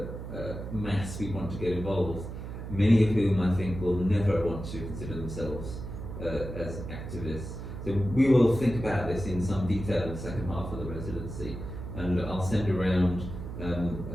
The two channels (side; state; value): right; noise; hum, 8 dB below the sound